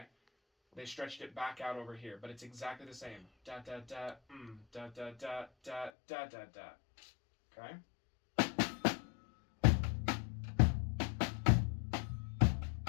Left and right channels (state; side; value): drops out; right; at 5.9 s